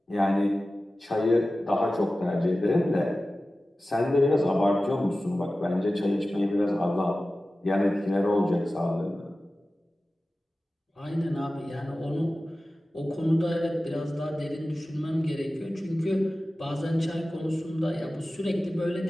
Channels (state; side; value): normal; both; correlation 0.95